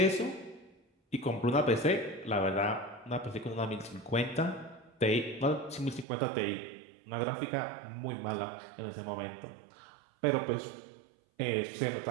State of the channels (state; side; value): drops out; left; at 6.1 s